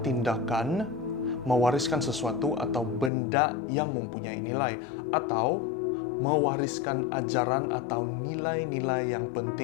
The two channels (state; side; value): drops out; right; at 3.1 s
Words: tindakan mewariskan sesuatu atau benda yang mempunyai nilai, atau mewariskan ajaran atau nilai-nilai yang